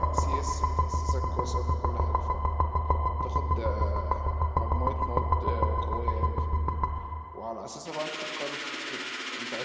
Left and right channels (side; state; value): both; identical; correlation 1.00